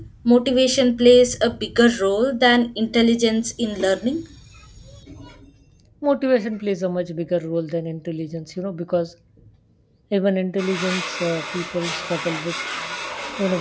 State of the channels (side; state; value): both; identical; correlation 1.00